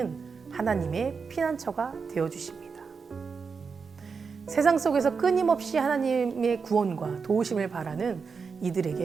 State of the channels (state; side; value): quieter; left; 5.4 dB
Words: 하나님의 피난처가 되어주십니다. 세상 속에서 끊임없이 하나님의 구원과 도우심을 바라는